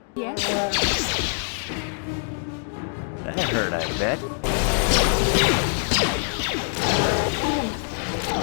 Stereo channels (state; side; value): silent; right; 58 dB below the other